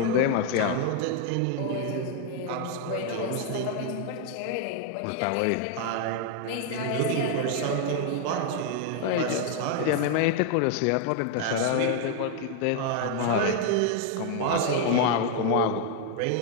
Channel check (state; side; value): different; both; correlation 0.00